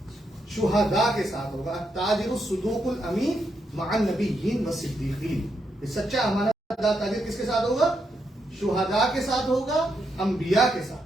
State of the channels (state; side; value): normal; both; correlation 0.81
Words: शुहदा के साथ होगा। ताजिर सुदूकुल अमीन मअन नबिय्यीन व सिद्दीकीन। सच्चा अमानतदार ताजिर किसके साथ होगा? शुहदा के साथ होगा, अंबिया के साथ